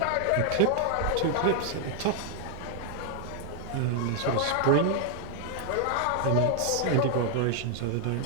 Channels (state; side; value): different; both; correlation 0.00